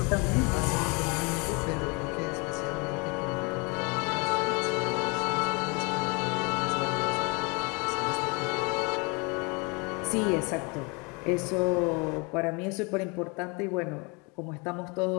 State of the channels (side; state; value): right; quieter; 30.2 dB